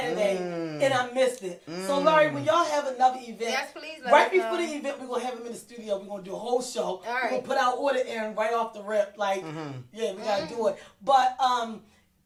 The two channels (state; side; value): identical; both; correlation 1.00